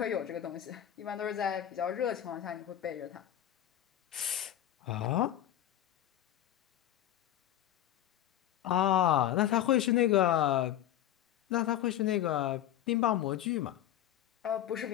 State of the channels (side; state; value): right; quieter; 11.9 dB